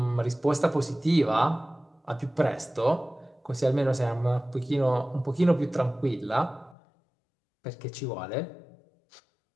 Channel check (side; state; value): right; drops out; at 6.8 s